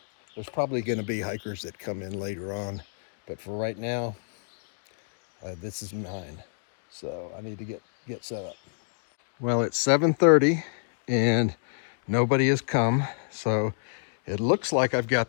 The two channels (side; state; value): right; silent; digital silence